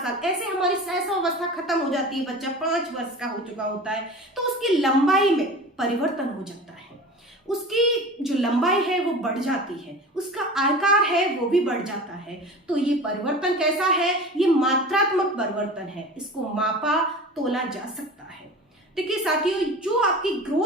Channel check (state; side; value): normal; both; correlation 0.36